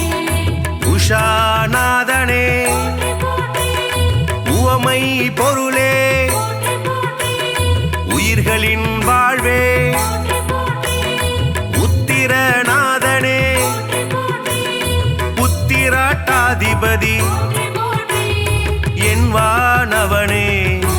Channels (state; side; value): identical; both; correlation 1.00